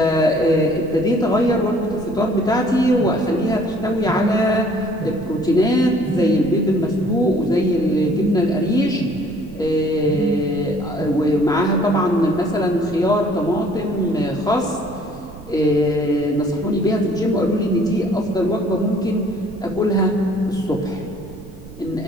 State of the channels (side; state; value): right; noise; rumble, 17 dB below the sound